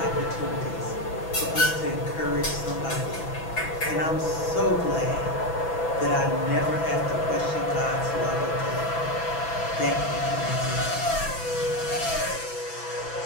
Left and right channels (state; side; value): late; right; 6.0 ms